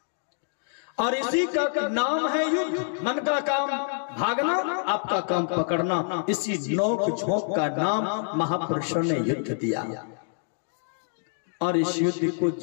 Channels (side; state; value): right; silent; digital silence